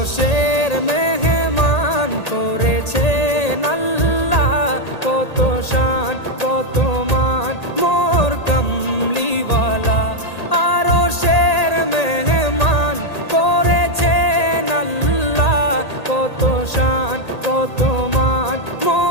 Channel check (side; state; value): right; late; 1.8 ms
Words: মেহমান করেছেন আল্লাহ, কত শান কত মান মোর কামলিওয়ালা। আরশের মেহমান করেছেন আল্লাহ, কত শান কত মান